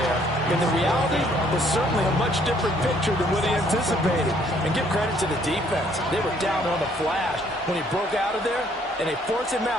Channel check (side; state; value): both; normal; correlation 0.64